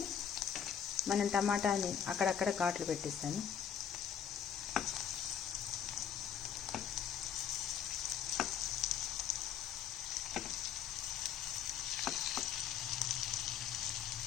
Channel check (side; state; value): right; quieter; 8.5 dB